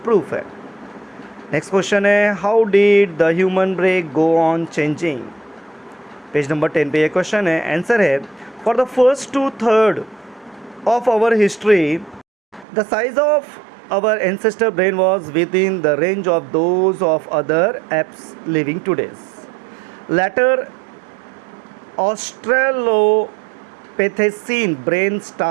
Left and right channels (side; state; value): left; drops out; at 12.7 s